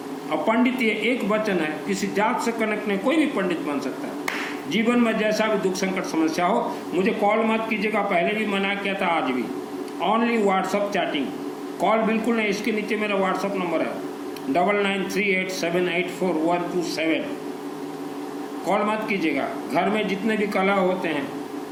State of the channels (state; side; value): identical; both; correlation 1.00